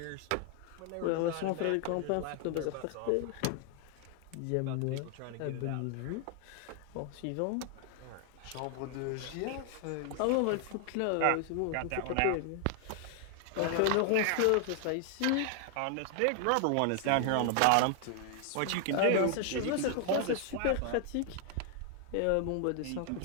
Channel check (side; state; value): both; different; correlation 0.00